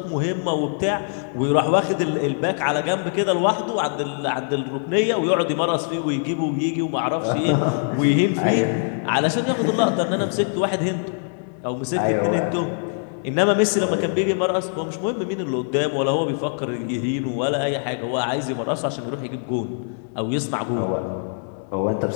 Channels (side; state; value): right; silent; 64 dB below the other